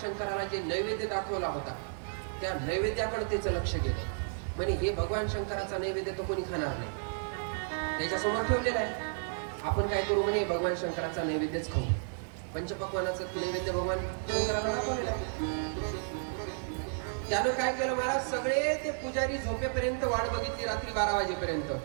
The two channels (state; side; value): silent; left; digital silence